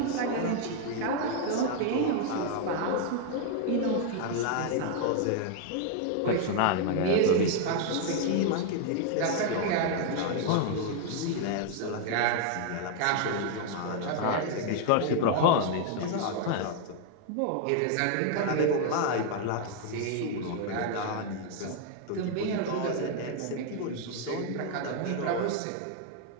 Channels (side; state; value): both; different; correlation 0.00